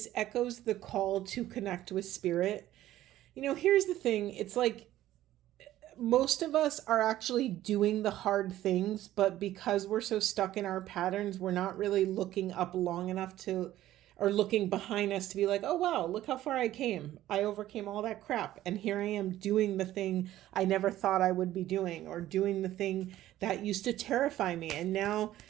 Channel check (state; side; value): quieter; left; 14.0 dB